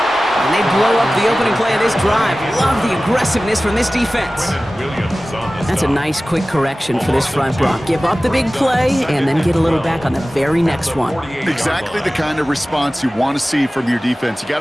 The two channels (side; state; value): both; normal; correlation 0.97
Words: And they blow up the opening play of this drive. Love the aggressiveness from this defense. That's a nice, quick correction for this front block. Give up the big play and then get a little back on the very next one. Exactly the kind of response you want to see from your defense. You got